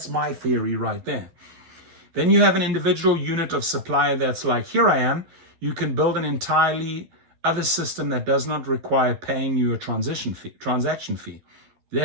my theory right there. Then you have an individual unit of supplier that's like, here I am. You can build an entirely other system that does not require paying you a transaction fee.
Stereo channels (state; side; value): late; left; 12 ms